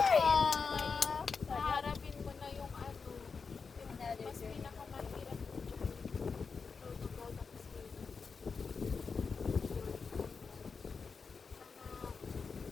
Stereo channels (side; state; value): right; quieter; 5.1 dB